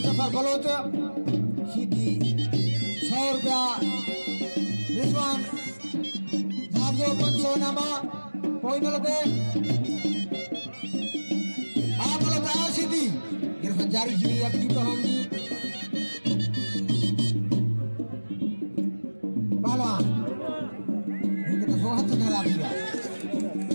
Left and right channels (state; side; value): inverted; both; correlation -1.00